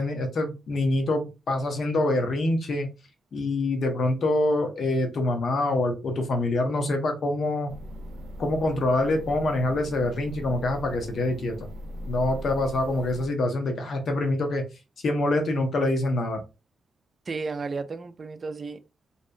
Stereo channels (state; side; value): normal; both; correlation 0.79